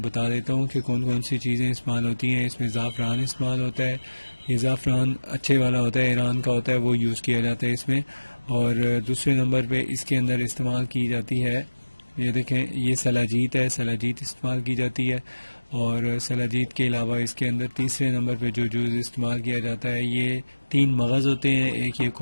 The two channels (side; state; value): both; inverted; correlation -1.00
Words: دیتا ہوں کہ کون کون سی چیزیں استعمال ہوتی ہیں۔ اس میں زعفران استعمال ہوتا ہے، یہ زعفران اچھے والا ہوتا ہے، ایران کا ہوتا ہے، وہ یوز کیا جاتا ہے اس میں۔ اور دوسرے نمبر پہ اس کے اندر استعمال کی جاتی ہے، یہ دیکھیں، یہ سلاجیت ہے، سلاجیت استعمال کی جاتی ہے۔ اور سلاجیت کے علاوہ اس کے اندر تیسرے نمبر پہ جو جوز استعمال کیا جاتا ہے، یہ 3 مغز ہوتے ہیں، ایک یہ